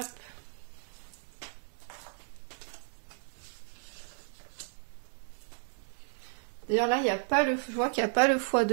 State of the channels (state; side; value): silent; left; 55 dB below the other